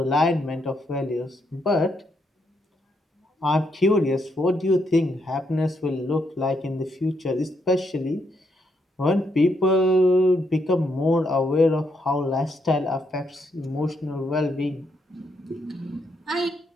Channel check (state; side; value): normal; both; correlation 0.77